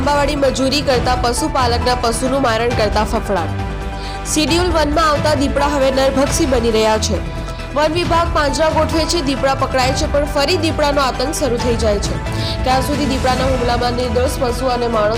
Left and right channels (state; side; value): identical; both; correlation 1.00